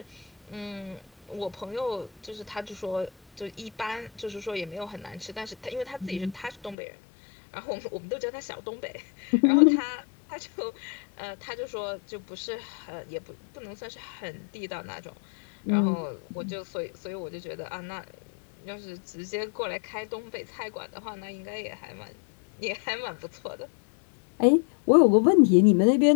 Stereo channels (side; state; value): right; drops out; at 6.8 s